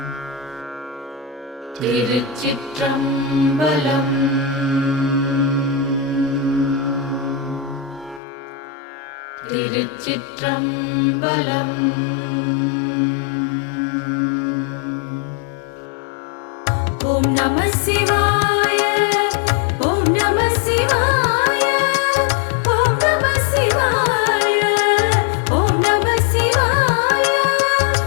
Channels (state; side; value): drops out; right; at 8.2 s